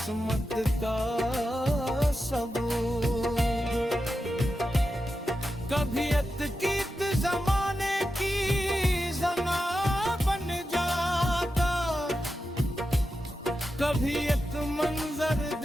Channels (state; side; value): normal; both; correlation 0.90